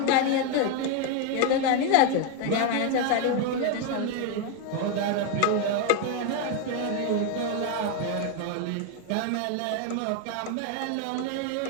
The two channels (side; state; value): both; different; correlation 0.01